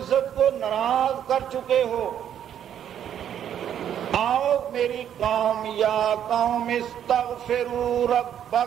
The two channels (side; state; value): left; quieter; 9.7 dB